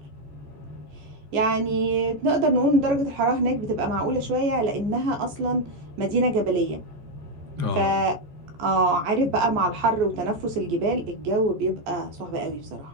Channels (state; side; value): late; left; 14 ms